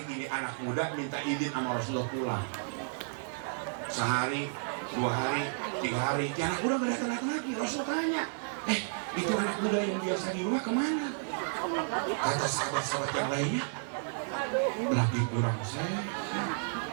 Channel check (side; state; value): left; silent; digital silence